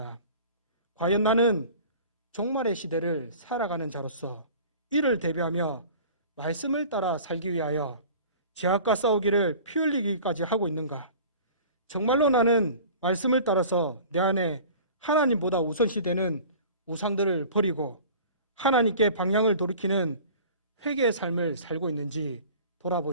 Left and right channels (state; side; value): inverted; both; correlation -0.43